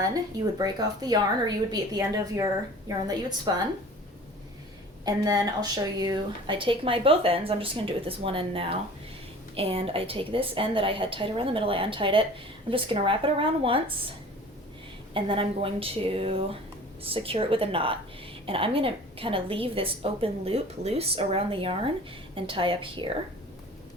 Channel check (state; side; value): normal; both; correlation 0.44